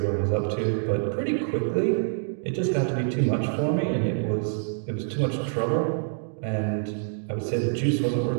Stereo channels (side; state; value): left; silent; digital silence